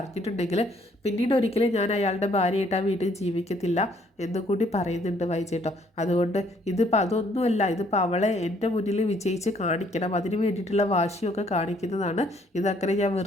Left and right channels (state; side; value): normal; both; correlation 0.65